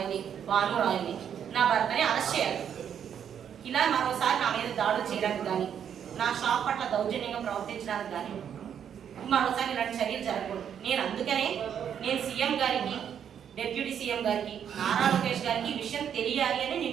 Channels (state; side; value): quieter; left; 8.6 dB